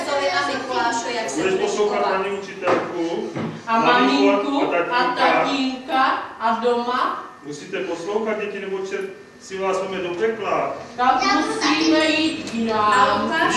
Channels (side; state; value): both; identical; correlation 1.00